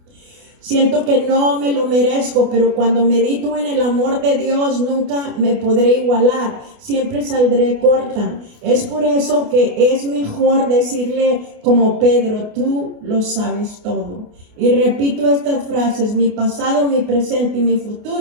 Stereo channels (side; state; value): left; late; 28 ms